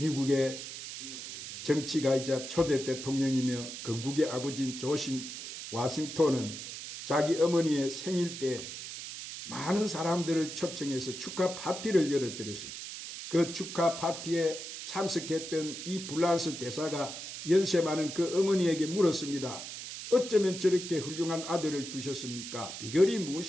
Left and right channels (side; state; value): right; noise; hiss, 9 dB below the sound